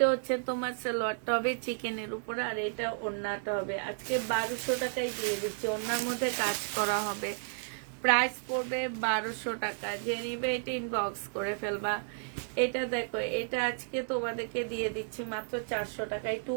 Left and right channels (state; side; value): silent; left; digital silence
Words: হচ্ছে তোমার সালোয়ারটা হবে চিকেনের উপরে, আর এটা ওড়নাটা হবে। আজকে 1200 টাকায় দিয়ে দিচ্ছি। ওড়নার মধ্যে কাজ করা হবে। প্রাইস পড়বে 1200 টাকা। যে নিবে এটা ইনবক্স করে ফেলবা। এটা দেখো, এটা আজকে তোমাদেরকে দিয়ে দিচ্ছি মাত্র 400 টাকায় টু